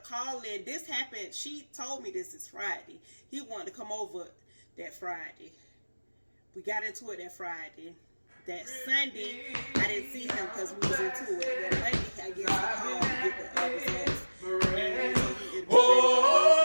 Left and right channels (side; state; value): both; inverted; correlation -1.00